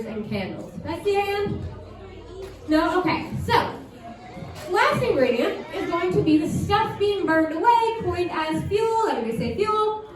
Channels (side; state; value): both; identical; correlation 1.00